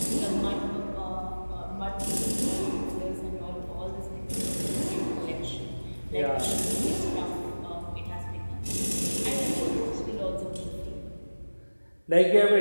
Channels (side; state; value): both; inverted; correlation -1.00